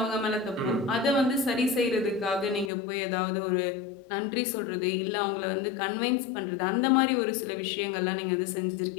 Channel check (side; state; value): right; drops out; at 2.7 s